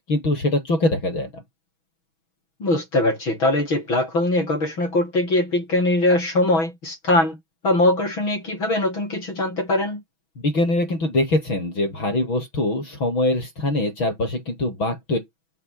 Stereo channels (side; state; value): right; late; 6.2 ms